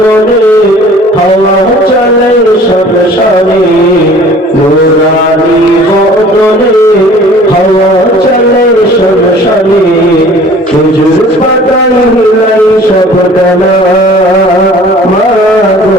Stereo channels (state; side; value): normal; both; correlation 0.49